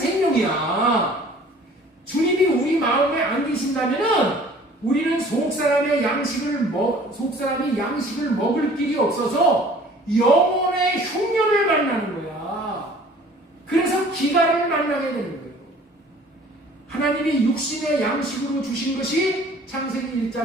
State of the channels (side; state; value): both; normal; correlation 0.51